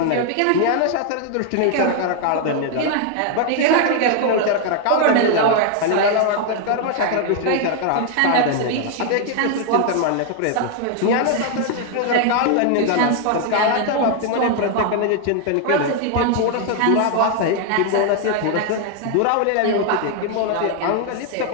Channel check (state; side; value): different; both; correlation 0.00